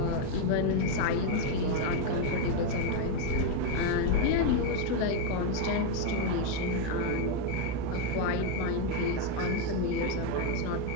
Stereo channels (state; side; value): different; both; correlation 0.02